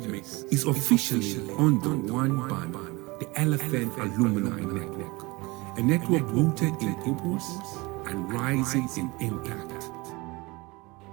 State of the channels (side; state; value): left; quieter; 24.0 dB